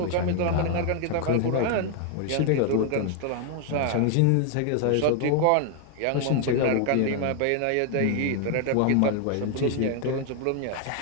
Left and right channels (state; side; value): different; both; correlation 0.00